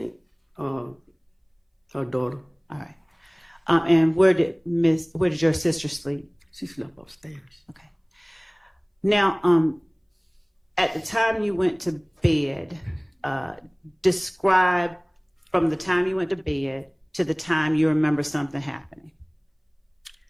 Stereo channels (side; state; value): both; identical; correlation 1.00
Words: her daughter. All right. And where did your sister sleep? She slept upstairs. Okay. Now, at the time you went to bed, describe from the time you went to bed to the time you remember something happening?